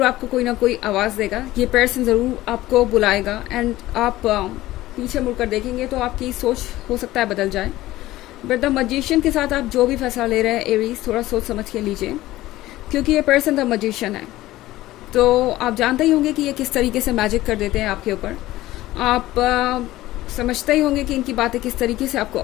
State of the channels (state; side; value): quieter; right; 16.4 dB